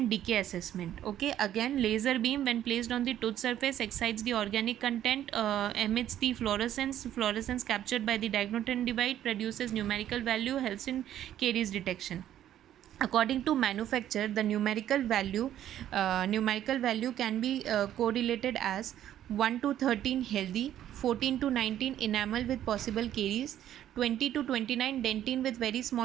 decay assessment. Okay, again, laser beam when placed on the tooth surface excites the organic content, emits the fluorescence captured by the diagnodent device, produces numerical value, helps in caries detection. According to manufacturer, the numerical value can be correlated as 1 to 13 healthy, 14 to 19 enamel with possible caries, 20 to 29 dentine with very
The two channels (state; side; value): quieter; left; 11.5 dB